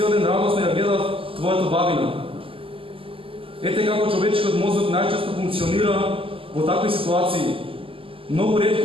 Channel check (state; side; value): late; left; 0.26 ms